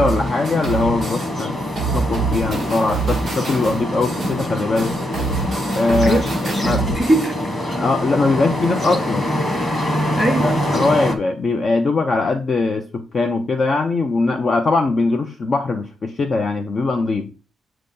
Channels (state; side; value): normal; both; correlation 0.83